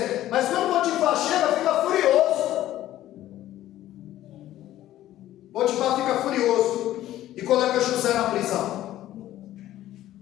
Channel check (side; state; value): right; quieter; 13.7 dB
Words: mas quando Potifar chega, fica furioso. Potifar fica furioso e coloca José na prisão.